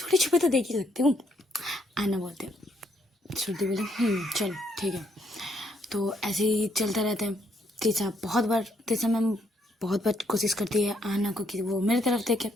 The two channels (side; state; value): both; normal; correlation 0.72